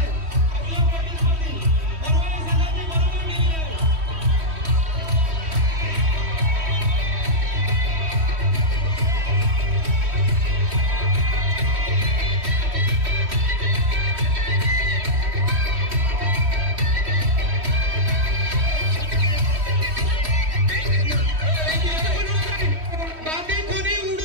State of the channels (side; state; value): left; late; 3.1 ms